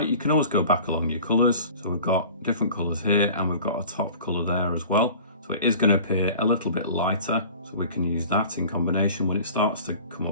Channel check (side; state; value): both; inverted; correlation -0.43